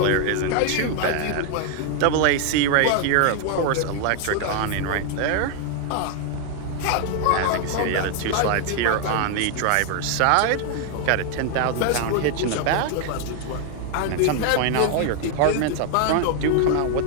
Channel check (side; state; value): both; different; correlation 0.00